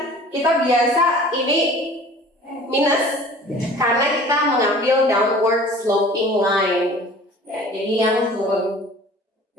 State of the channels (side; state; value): both; normal; correlation 0.46